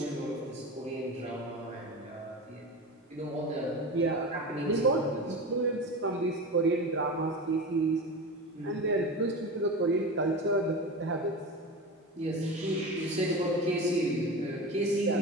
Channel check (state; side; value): normal; both; correlation 0.27